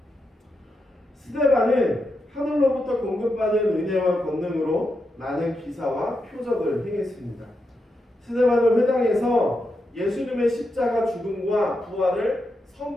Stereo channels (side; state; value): both; normal; correlation 0.85